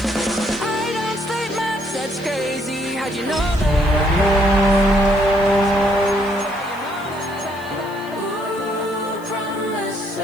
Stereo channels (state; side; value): noise; left; hiss, 23 dB below the sound